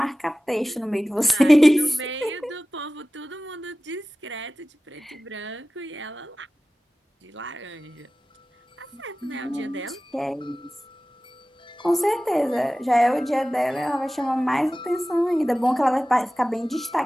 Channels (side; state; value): both; normal; correlation 0.96